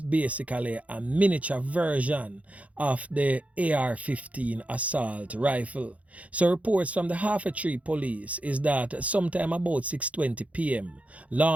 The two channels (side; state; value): left; late; 0.067 ms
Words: a miniature version of the AR-15 assault rifle. So reports from the Half-a-Tree police is that sometime about 6:20 p.m.,